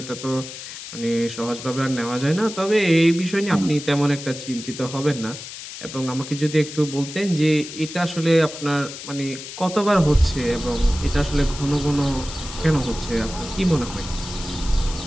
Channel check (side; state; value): left; noise; hiss, 11 dB below the sound